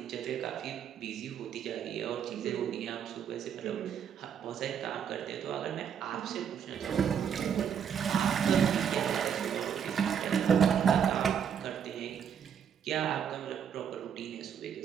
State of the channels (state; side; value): quieter; left; 8.0 dB